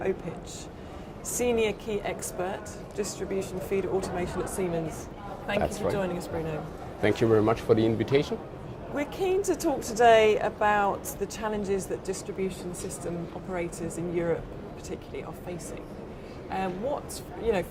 Senior Key Expert, Distribution Feeder Automation at Siemens. Thank you for joining us, Bruno. Thank you very much for the invitation. We're keen to talk today about the challenges that distribution system operators in Europe particularly are facing.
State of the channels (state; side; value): identical; both; correlation 1.00